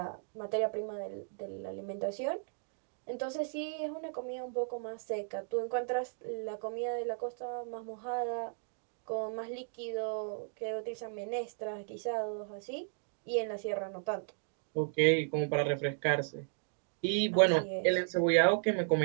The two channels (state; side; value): silent; left; digital silence